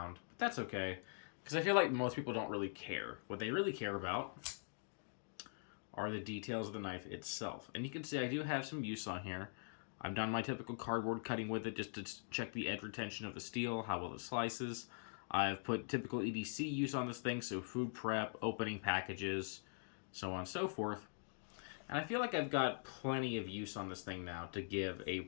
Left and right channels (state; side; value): silent; right; digital silence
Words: But that's okay, because I feel like most people don't really care. What they really care about are the details of the knife itself. And you can see I do have some use on here. I've done my typical cardboard cutting with it just to check the edge retention of the steel, how well it slices. I've put typical EDC use on this thing, so food prep, opening packages, so on and so forth. And I feel like I've got plenty of use on this thing now to give a